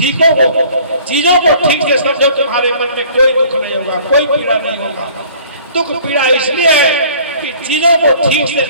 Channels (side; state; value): both; inverted; correlation -0.52